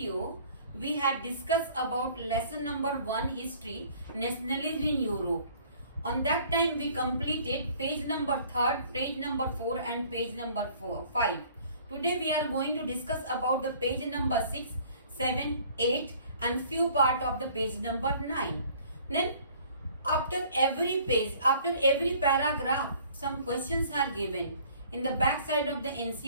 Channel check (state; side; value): inverted; both; correlation -0.54